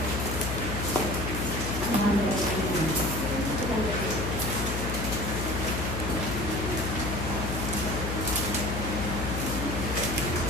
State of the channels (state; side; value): noise; left; hum, 3 dB below the sound